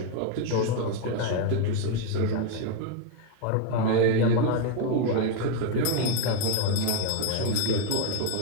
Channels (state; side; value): different; both; correlation 0.01